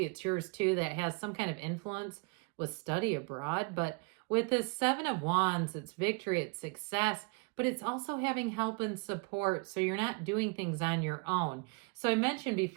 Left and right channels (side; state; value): left; quieter; 31.5 dB